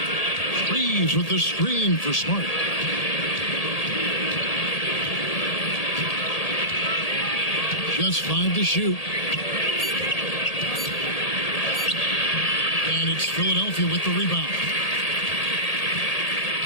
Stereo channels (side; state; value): right; late; 1.8 ms